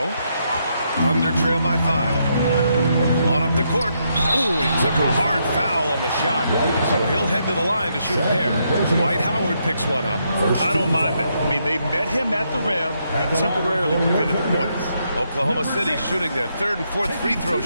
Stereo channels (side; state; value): both; inverted; correlation -0.78